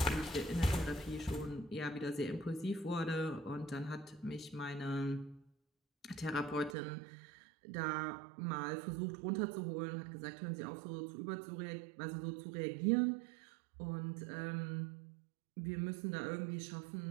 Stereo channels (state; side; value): drops out; left; at 6.8 s